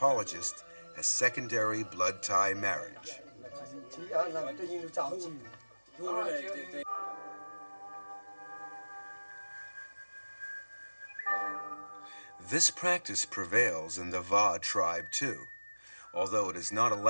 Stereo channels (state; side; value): inverted; both; correlation -1.00